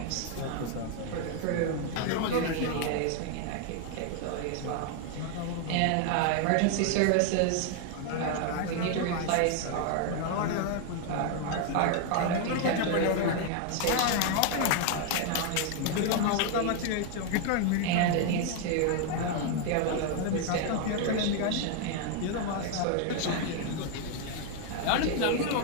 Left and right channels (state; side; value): different; both; correlation 0.00